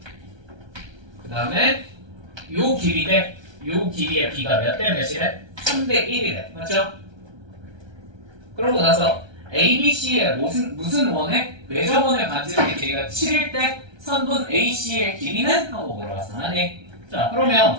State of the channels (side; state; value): left; late; 1.3 ms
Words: 그 다음에 요 길이 요 길이의 B가 몇 대 몇이래? 3대 1이래. 맞죠? 그러고 나서 ABC의 무슨 원에 외접원의 반지름의 길이가 7일 때 선분 AC의 길이는? 하고 물어봤어. 아니. 자, 그러면